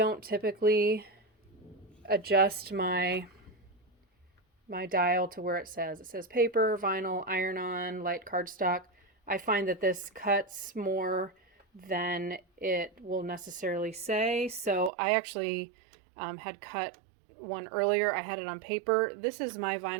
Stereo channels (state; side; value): drops out; left; at 14.9 s